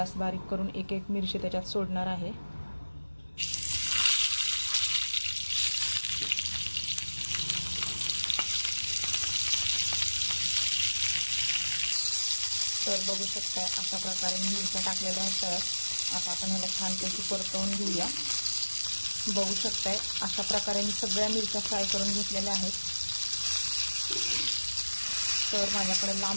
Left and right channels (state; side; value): inverted; both; correlation -1.00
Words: बारीक करून एक एक मिरची त्याच्यात सोडणार आहे। तर बघू शकता अशा प्रकारे मी मिरच्या टाकलेल्या आहेत। तर आता आपण ह्याला छानपैकी परतवून घेऊया। बघू शकता अशा प्रकारे मी सगळ्या मिरच्या फ्राय करून घेतलेल्या आहेत। तर माझ्याकडे